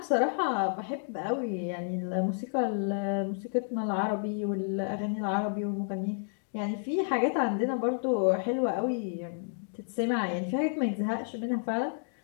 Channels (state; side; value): silent; right; digital silence